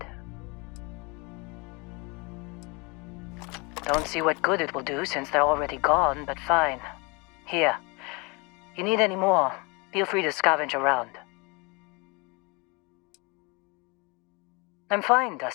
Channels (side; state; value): right; quieter; 28.5 dB